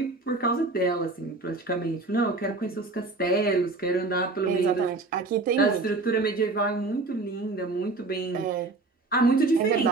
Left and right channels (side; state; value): left; quieter; 3.4 dB